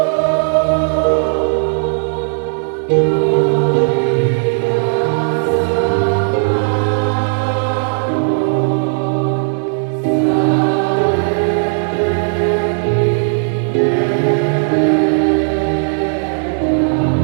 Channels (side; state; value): left; silent; digital silence